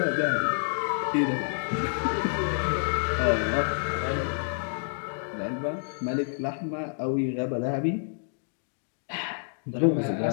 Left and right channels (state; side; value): silent; right; digital silence